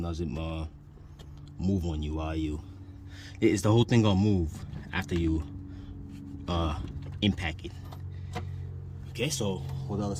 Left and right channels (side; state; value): both; identical; correlation 1.00